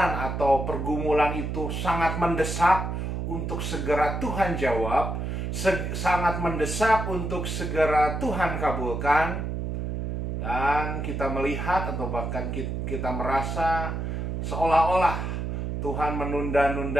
atau pergumulan itu sangat mendesak untuk segera Tuhan jawab, sangat mendesak untuk segera Tuhan kabulkan, dan kita melihat atau bahkan kita merasa seolah-olah Tuhan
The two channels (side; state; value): right; noise; hum, 3 dB below the sound